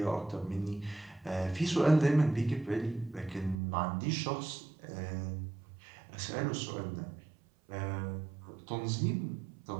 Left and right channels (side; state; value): left; drops out; at 3.6 s